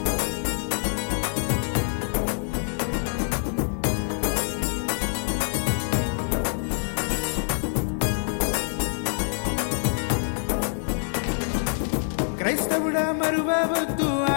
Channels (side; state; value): right; silent; digital silence